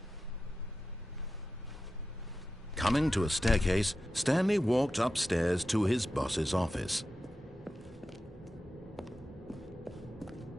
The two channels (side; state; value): both; normal; correlation 0.92